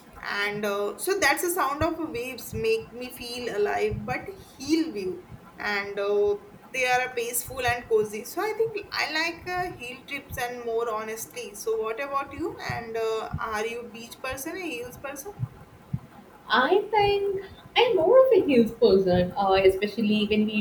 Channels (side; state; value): both; identical; correlation 1.00